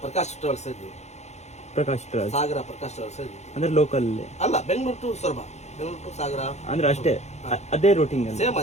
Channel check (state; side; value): late; right; 0.33 ms